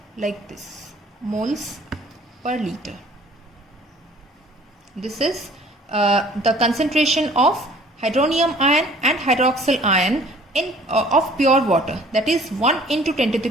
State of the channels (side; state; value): both; normal; correlation 0.53